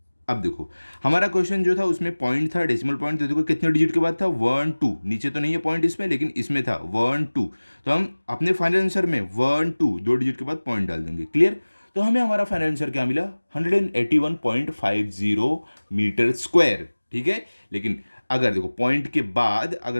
अब देखो हमारा क्वेश्चन जो था उसमें पॉइंट था, डेसिमल पॉइंट, तो देखो कितने डिजिट के बाद था 1 2, नीचे तो नहीं है पॉइंट इसमें, लेकिन इसमें था 1 2, तो हम अपने फाइनल आंसर में 1 2 2 डिजिट के बाद पॉइंट डाल देंगे, क्लियर। तो हमें हमारा फाइनल आंसर क्या मिला 181.50 मीटर स्क्वायर, ठीक है। लेकिन अगर देखो पॉइंट के बाद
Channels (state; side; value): inverted; both; correlation -1.00